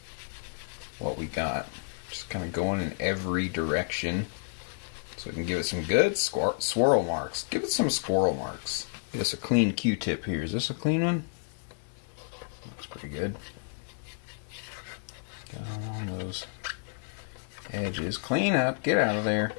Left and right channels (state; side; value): silent; right; 57 dB below the other